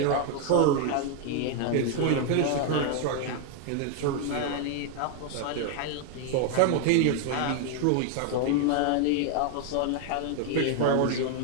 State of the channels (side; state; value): both; different; correlation 0.01